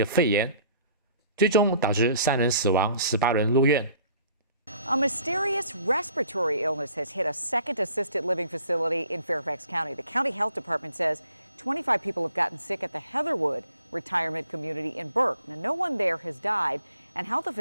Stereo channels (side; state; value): both; inverted; correlation -0.57